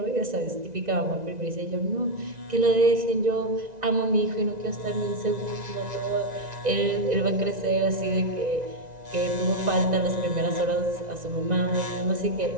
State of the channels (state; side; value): late; left; 1.9 ms